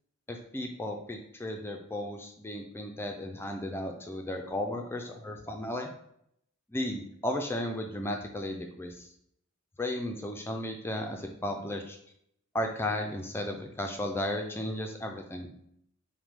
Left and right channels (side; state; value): both; normal; correlation 0.50